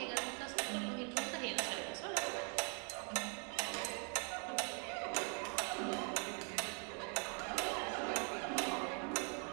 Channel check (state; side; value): quieter; left; 39.2 dB